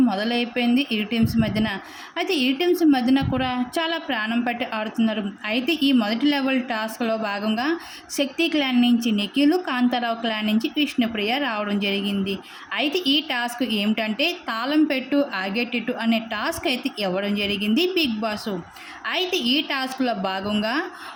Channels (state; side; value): identical; both; correlation 1.00